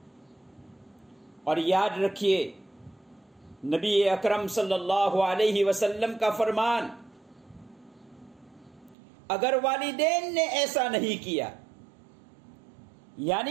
और याद रखिए, नबी अकरम सल्लल्लाहु अलैहि वसल्लम का फरमान, अगर वालिदैन ने ऐसा नहीं किया,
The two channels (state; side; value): drops out; left; at 9.0 s